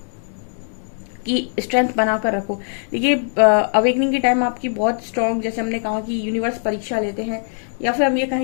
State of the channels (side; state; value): right; silent; digital silence